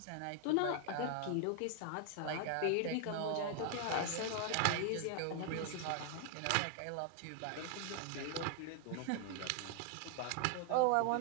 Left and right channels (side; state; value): both; different; correlation 0.00